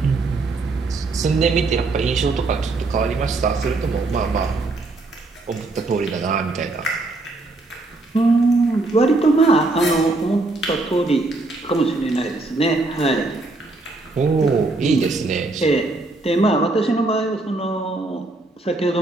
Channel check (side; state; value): left; quieter; 3.2 dB